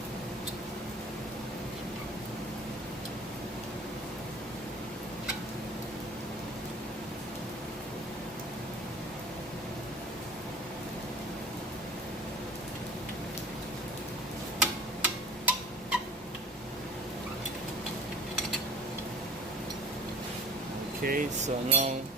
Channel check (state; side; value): normal; both; correlation 0.44